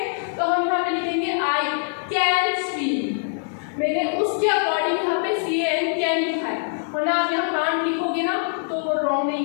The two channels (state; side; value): silent; right; digital silence